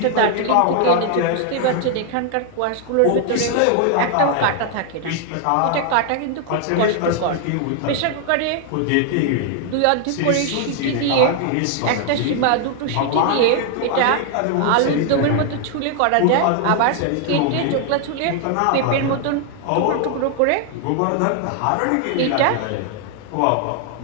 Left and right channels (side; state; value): both; different; correlation 0.00